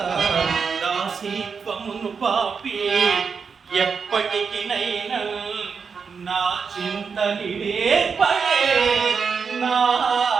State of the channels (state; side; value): quieter; left; 5.7 dB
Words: దాసీత్వమును పాపి ఎప్పటికినైనా నా చింతనిడే పడే నా